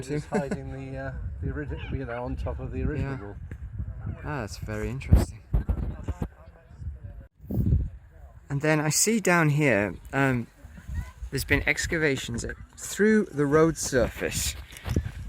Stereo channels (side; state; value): both; identical; correlation 1.00